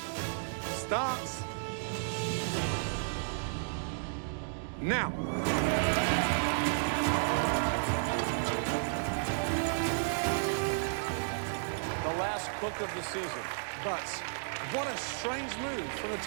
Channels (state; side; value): silent; left; digital silence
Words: starts now. The last cook of the season. But what a strange move from